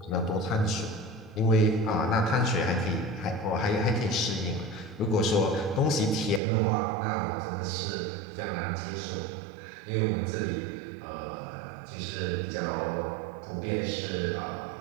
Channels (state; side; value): drops out; left; at 6.4 s